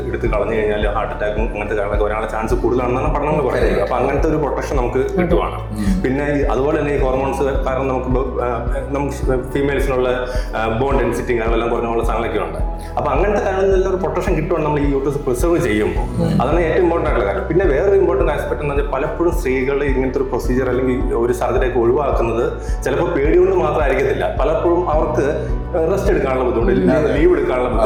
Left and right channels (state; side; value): identical; both; correlation 1.00